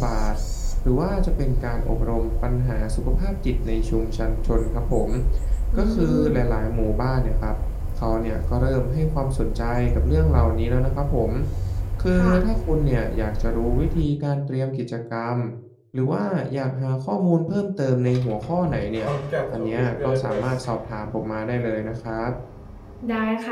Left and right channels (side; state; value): both; identical; correlation 1.00